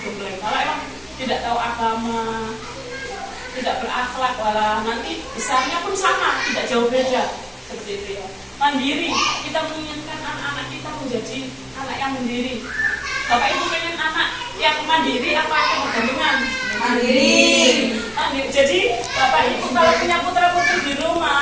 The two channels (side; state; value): both; identical; correlation 1.00